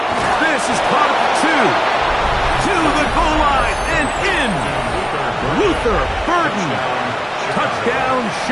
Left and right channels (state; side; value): identical; both; correlation 1.00